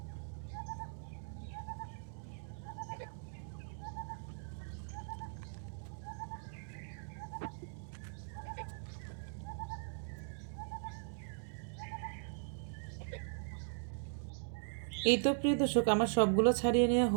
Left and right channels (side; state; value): left; silent; digital silence